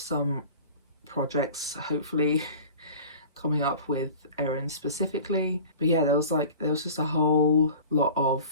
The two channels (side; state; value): both; inverted; correlation -0.40